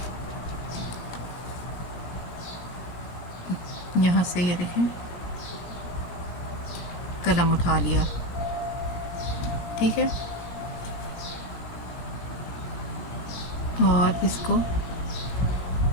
यहाँ से ये देखें, कलम उठा लिया, ठीक है, और इसको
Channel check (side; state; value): right; late; 17 ms